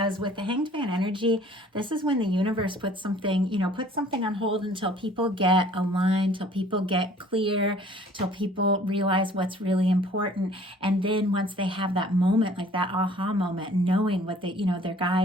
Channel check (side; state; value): both; normal; correlation 0.54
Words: with the Hanged Man energy, this is when the universe puts something on hold until people get aligned, till people get clear, till people realize what's really important. And then once they have that moment, like that aha moment, knowing what their